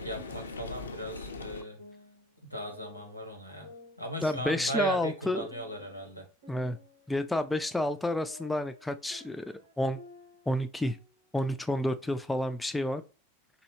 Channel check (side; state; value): both; normal; correlation 0.68